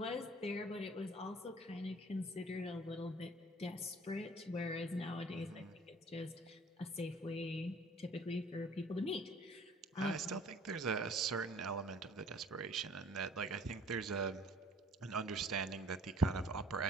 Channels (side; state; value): both; normal; correlation 0.52